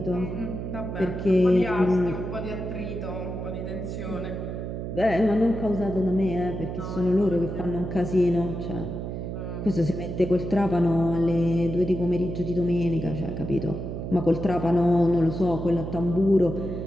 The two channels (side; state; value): right; noise; hum, 6 dB below the sound